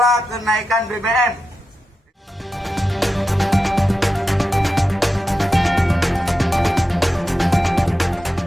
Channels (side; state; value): both; normal; correlation 0.91